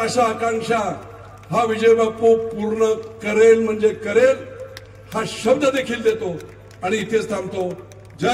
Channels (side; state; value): both; identical; correlation 1.00